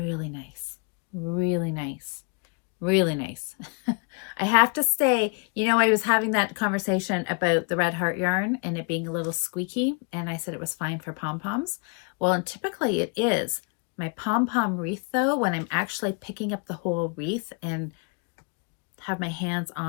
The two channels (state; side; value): quieter; right; 34.4 dB